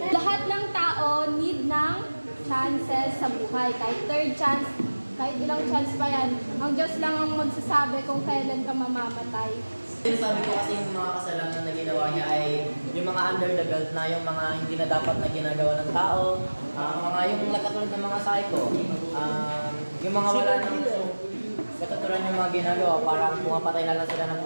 Lahat ng tao need ng chances sa buhay. Kahit third chance, kahit ilang chance pa yan. Ang Diyos lang ang magsasabi kung kailan ka mamamatay. Sabi ko kasi yung mga kasalanan na ginawa niya ay yung mga under the belt na, yung mga hindi na dapat na ginagawa ng tao, mga yung katulad ng mga psycho, yung mga wala nang katulad yung mga ginagawa, parang pumapatay na lang sila ng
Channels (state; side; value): inverted; both; correlation -1.00